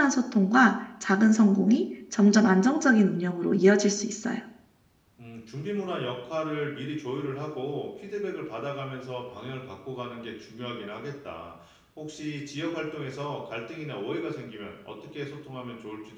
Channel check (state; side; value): identical; both; correlation 1.00